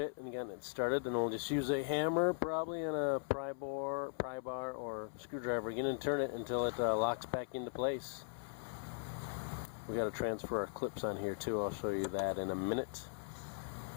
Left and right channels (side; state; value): right; silent; 52 dB below the other